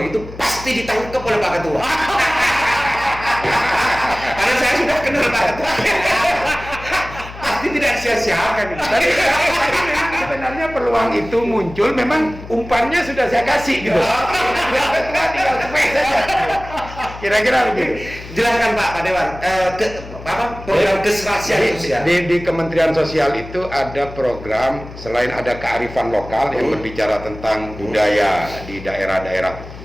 pasti ditangkap oleh Pak Ketua. Karena saya sudah kenal Pak Ketua. Pasti tidak sia-siakan. Tapi sebenarnya peluang itu muncul, memang umpannya sudah saya kasih gitu. Ketua tinggal spek saja. Kira-kira begitu. Jelaskan Pak Dewan, program keserasian sosial. Di Kementerian Sosial itu ada program, selain ada kearifan lokal yang berbicara tentang budaya di daerah-daerah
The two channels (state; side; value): noise; left; hum, 14 dB below the sound